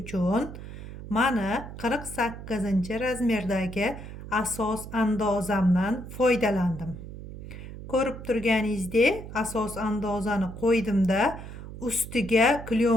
uchun mana 48-razmerdagi asos andozamdan foydalandim. Ko'rib turganingizdek, asos andozani qo'ydimda, ustiga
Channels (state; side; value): noise; right; hum, 12 dB below the sound